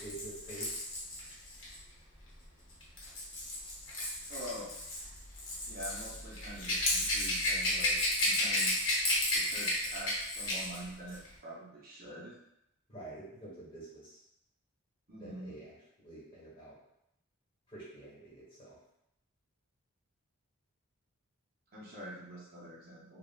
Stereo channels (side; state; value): both; normal; correlation -0.02